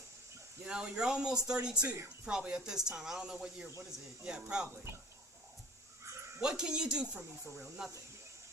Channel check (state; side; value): normal; both; correlation 0.43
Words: You know, you're almost 32, probably at this time. I don't know what year. What is it? Yeah, probably. What can you do for me for real? Nothing.